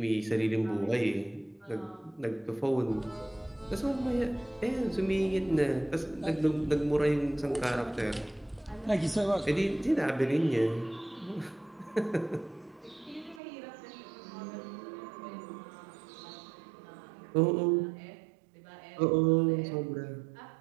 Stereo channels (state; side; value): drops out; left; at 13.4 s